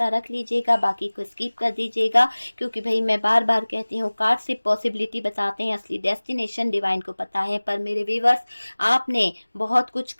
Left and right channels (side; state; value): both; inverted; correlation -1.00